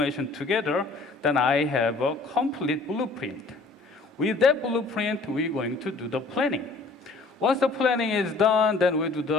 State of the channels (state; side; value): quieter; right; 3.6 dB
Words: together, then I have a complete blueprint. With that blueprint, we're going to do the planning. Once the planning is done, then we do